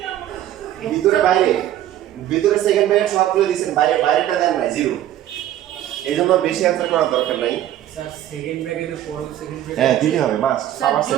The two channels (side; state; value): left; quieter; 12.5 dB